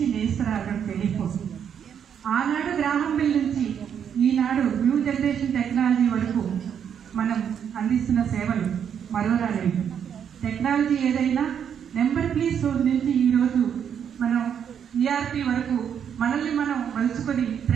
నేస్తరాగం టెలిఫోన్. ఆనాడు గ్రామం బిల్ నుంచి ఈనాడు న్యూ జనరేషన్ టెక్నాలజీ వరకు మనం అందిస్తున్న సేవలు మరోరాలేవు. టెక్నాలజీ ఏదైనా నెంబర్ ప్లీజ్ నుంచి ఈరోజు మనం ఈఆర్పి వరకు మనల్ని మనం మలుచుకొని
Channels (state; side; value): quieter; left; 8.2 dB